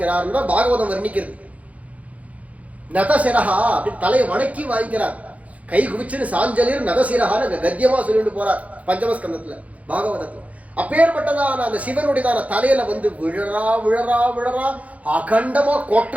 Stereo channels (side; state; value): left; late; 0.068 ms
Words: தான் பாகவதம் வர்ணிக்கிறது. நதசிரஹா அப்படி தலையை வணக்கி வாங்கிக்கிறார். கை குவிச்சுன்னு சாஞ்சலிர் நதசிரஹான்னு கத்தியமா சொல்லிட்டு போறார் பஞ்சமஸ்கந்தத்துல பாகவதத்துல. அப்பேற்பட்டதான அந்த சிவனுடையதான தலையில விழறா விழறா விழறா அகண்டமா